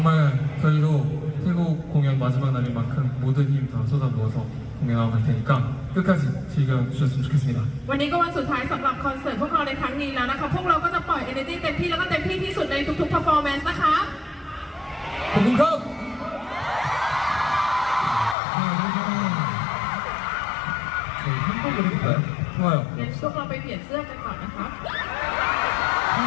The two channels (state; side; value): drops out; right; at 18.4 s